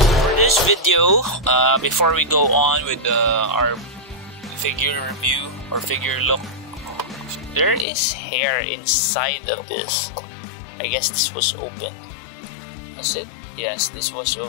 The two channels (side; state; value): right; drops out; at 7.9 s